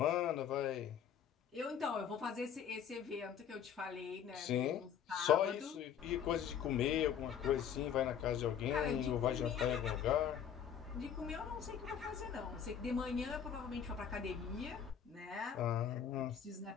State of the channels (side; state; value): right; quieter; 8.4 dB